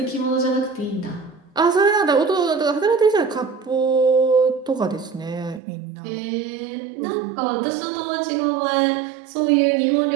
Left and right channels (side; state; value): left; drops out; at 5.6 s